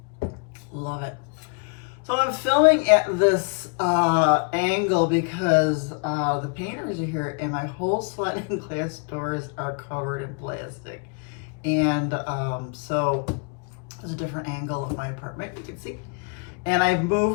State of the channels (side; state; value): right; quieter; 37.1 dB